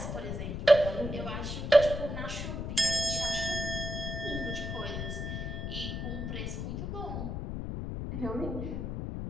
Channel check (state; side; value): noise; left; rumble, 4 dB below the sound